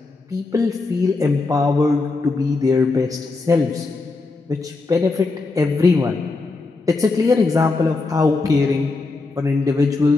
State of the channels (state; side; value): quieter; right; 3.7 dB